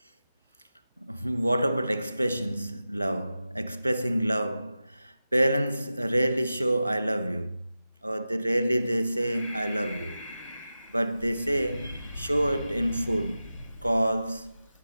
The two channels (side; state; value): both; inverted; correlation -0.93